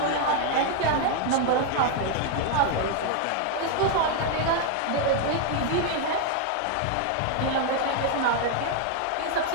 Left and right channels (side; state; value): both; different; correlation 0.00